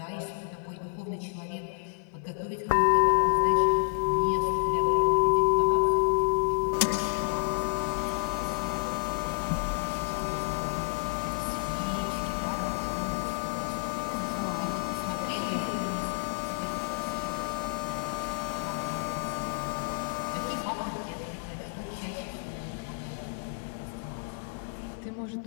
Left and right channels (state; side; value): silent; right; digital silence